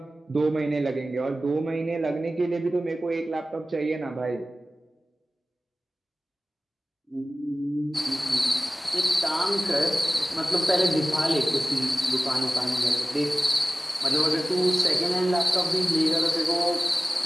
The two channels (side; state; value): both; normal; correlation 0.96